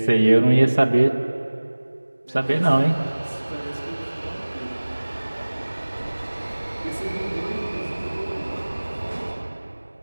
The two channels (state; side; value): inverted; both; correlation -1.00